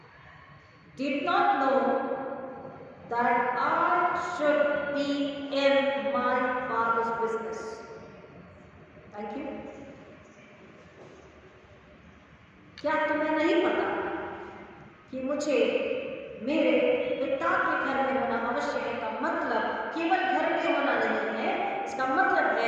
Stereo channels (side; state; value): both; identical; correlation 1.00